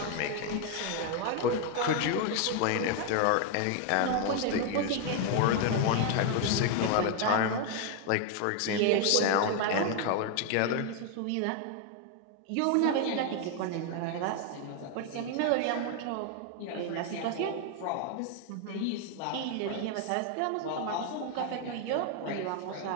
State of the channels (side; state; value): both; different; correlation 0.01